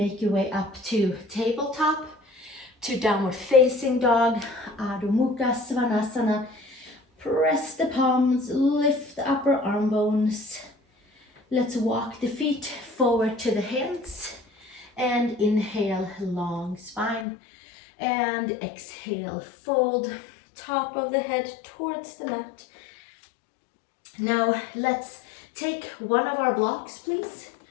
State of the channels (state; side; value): drops out; right; at 17.2 s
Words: your way up to tabletop, to downward facing dog, Adho Mukha Svanasana. Press the palms, lift the upper arm bones. Let's walk the feet forward to the hands, and inhale, long spine, and exhale, fold top of the head towards the mat. Now let's take one of our blocks, please,